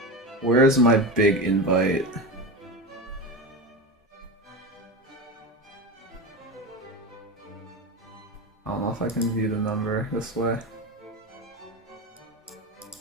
Where's my big invite? I don't know if I can view the number this way.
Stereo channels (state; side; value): normal; both; correlation 0.22